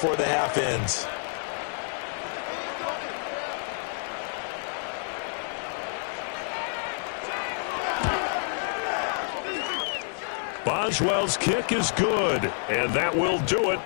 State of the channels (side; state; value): right; silent; 59 dB below the other